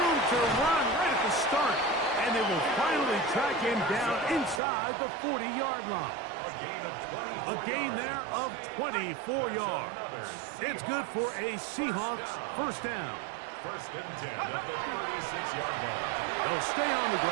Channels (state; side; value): drops out; left; at 4.6 s